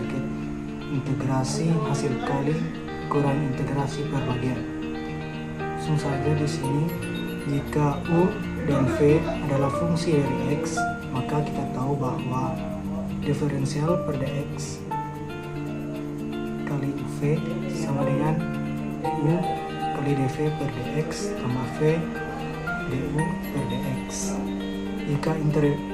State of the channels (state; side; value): identical; both; correlation 1.00